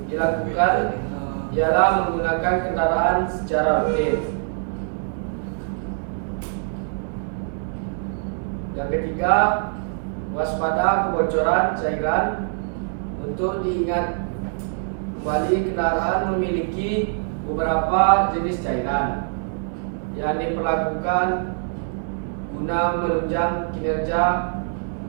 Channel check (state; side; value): silent; left; 63 dB below the other